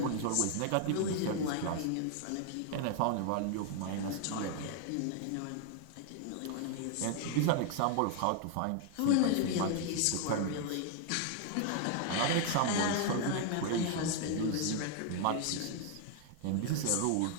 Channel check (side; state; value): both; different; correlation 0.00